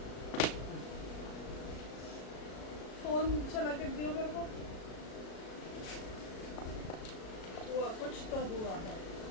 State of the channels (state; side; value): late; right; 37 ms